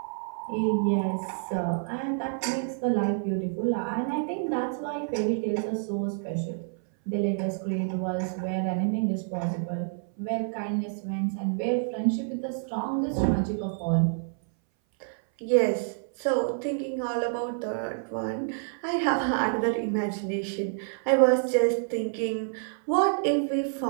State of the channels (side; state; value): left; silent; 58 dB below the other